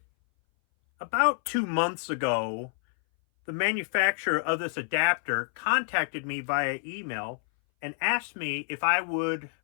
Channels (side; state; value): right; silent; 59 dB below the other